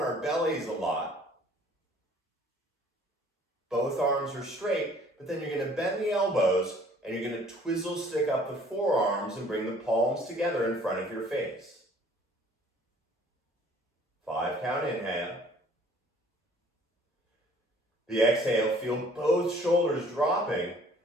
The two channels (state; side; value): normal; both; correlation 0.55